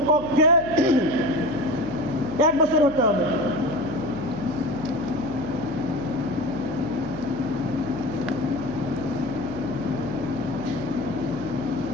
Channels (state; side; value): noise; right; hum, 14 dB below the sound